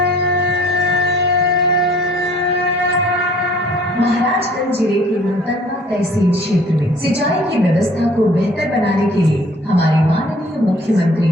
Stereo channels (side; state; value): both; normal; correlation 0.53